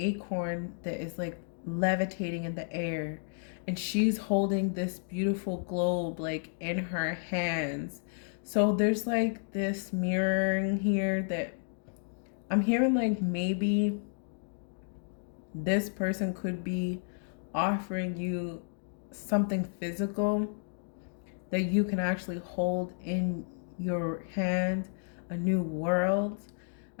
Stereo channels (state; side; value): silent; right; digital silence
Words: that is like levitating in the air, and she's holding this beautiful globe like in her hands. So there's like this mirroring here that I'm hearing, like maybe this person could be offering you something physical that you can actually hold in your hand, a new world.